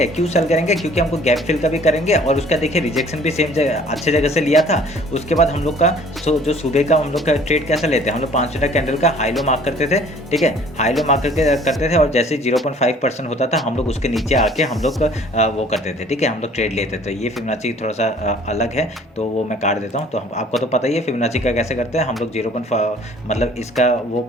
क्यों सेल करेंगे, क्योंकि हमको गैप फिल का भी करेंगे और उसका देखिए रिजेक्शन भी सेम अच्छे जगह से लिया था। उसके बाद हम लोग का जो सुबह का हम लोग का ट्रेड कैसा लेते हैं, हम लोग 5 मिनट कैंडल का हाई लो मार्क करते थे, ठीक है। हाई लो मार्क करते थे और जैसे 0.5% होता था हम लोग उसके नीचे आके हम लोग वो करते थे, ठीक है, हम लोग ट्रेड लेते थे। ये फिबोनाची थोड़ा सा अलग है, तो वो मैं काट देता हूँ। तो आपको तो पता ही है फिबोनाची का कैसे करते हैं हम लोग। 0.5 मतलब इसका वो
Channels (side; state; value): both; normal; correlation 0.53